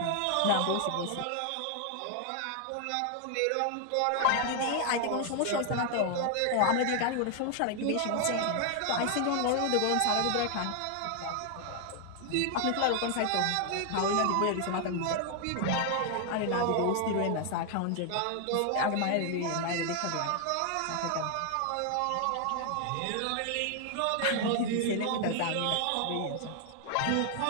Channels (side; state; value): both; different; correlation 0.00